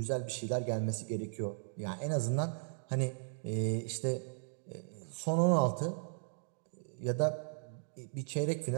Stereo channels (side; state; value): left; silent; digital silence